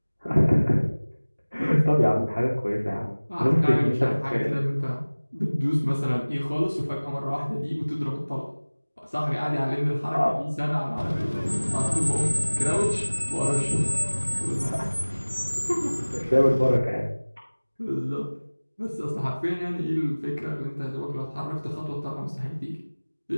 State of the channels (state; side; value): inverted; both; correlation -1.00